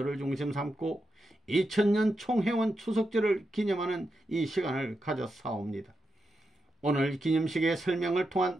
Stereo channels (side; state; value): both; normal; correlation 0.87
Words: 중심 삼고 2000년 총회원 추석절을 기념하는 이 시간을 가졌사옵니다. 오늘 기념식의 설명을 통한